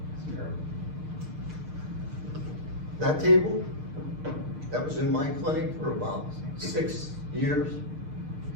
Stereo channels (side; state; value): left; late; 6.6 ms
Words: That table, that was in my clinic for about 6 years.